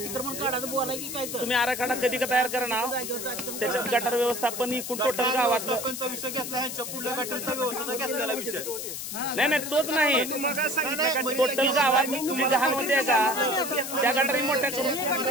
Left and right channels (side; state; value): left; noise; hiss, 6 dB below the sound